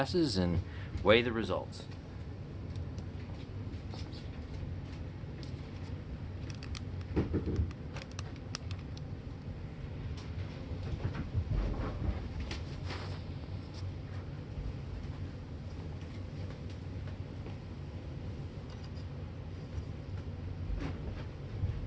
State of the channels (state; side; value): identical; both; correlation 1.00